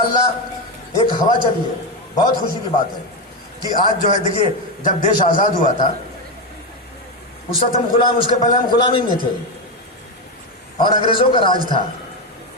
एक हवा चली है। बहुत खुशी की बात है कि आज जो है, देखिए, जब देश आज़ाद हुआ था उस वक्त हम गुलाम, उसके पहले हम गुलामी में थे और अंग्रेज़ों का राज था।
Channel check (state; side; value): normal; both; correlation 0.11